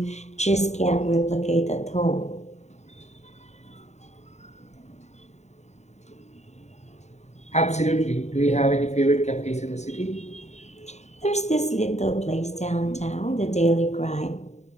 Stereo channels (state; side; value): late; right; 0.33 ms